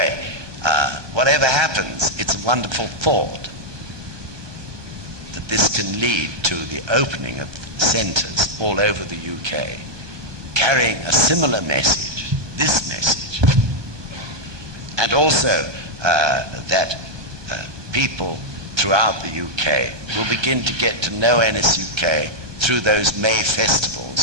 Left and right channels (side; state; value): left; late; 1.3 ms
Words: whatever happens, it's a wonderful thought that this can lead to the opening of centres all over the UK, carrying a similar message, this message, and also that people throughout the UK will begin to get to know NSUK through those May